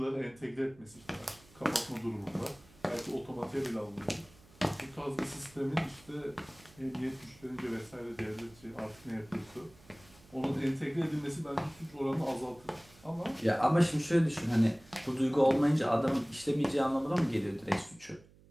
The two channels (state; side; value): noise; right; hum, 26 dB below the sound